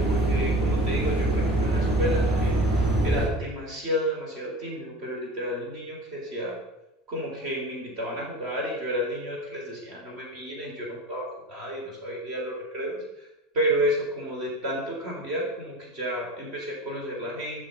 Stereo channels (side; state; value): both; normal; correlation 0.35